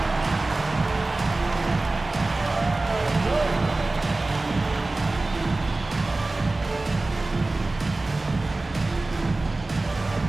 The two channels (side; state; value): left; quieter; 3.1 dB